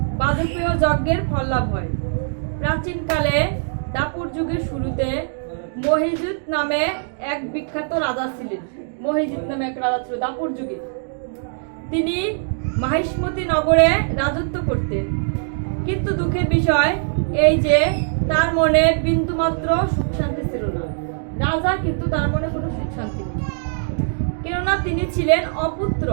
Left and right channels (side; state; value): left; silent; digital silence